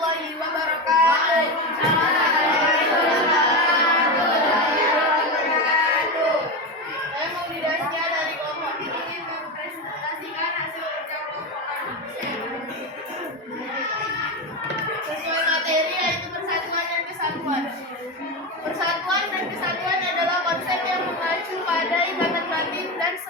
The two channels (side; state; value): both; normal; correlation 0.16